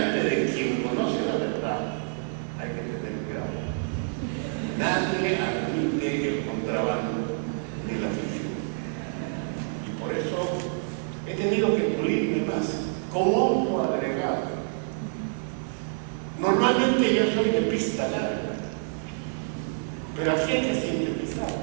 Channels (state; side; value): silent; left; digital silence